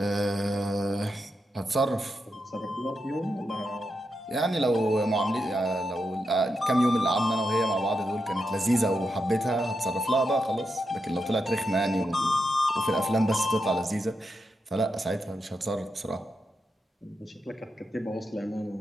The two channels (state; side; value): normal; both; correlation 0.85